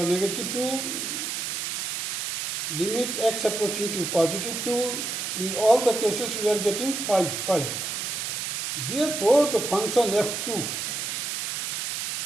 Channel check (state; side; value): noise; right; hiss, 3 dB below the sound